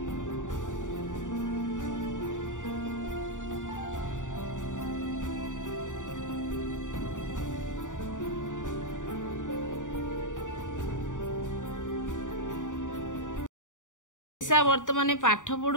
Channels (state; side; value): late; right; 0.87 ms